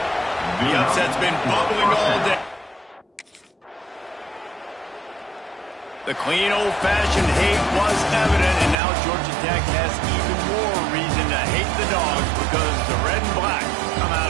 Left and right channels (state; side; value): drops out; left; at 8.8 s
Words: The upset's been bubbling all day. The clean, old-fashioned hate was evident, and now Georgia Tech has even more reason to hate the Dogs because the red and black come